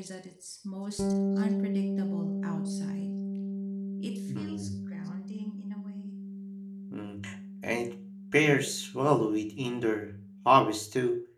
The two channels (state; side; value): identical; both; correlation 1.00